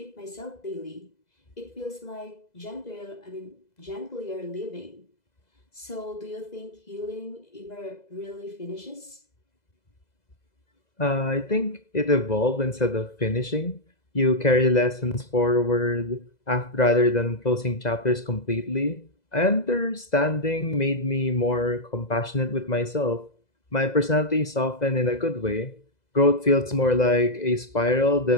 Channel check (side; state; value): right; late; 2.0 ms